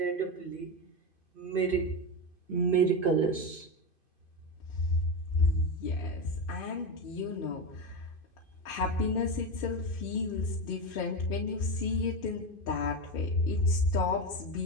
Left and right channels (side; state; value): right; late; 2.5 ms